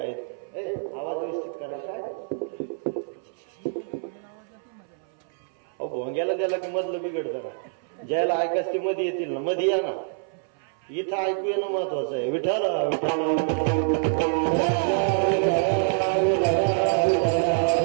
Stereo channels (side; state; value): left; silent; 61 dB below the other